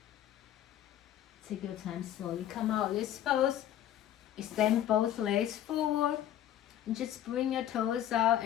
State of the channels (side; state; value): right; quieter; 11.5 dB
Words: Take your time slowly. Come out this pose. Extend both legs forward. And just bring your toes out